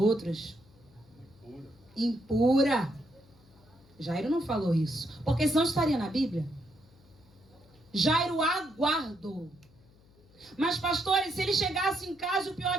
Impura. Jairo não falou isso, porque senão estaria na Bíblia. Jairo aguardou. Mas, pastores, se ele chegasse em casa e o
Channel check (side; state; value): left; noise; hum, 28 dB below the sound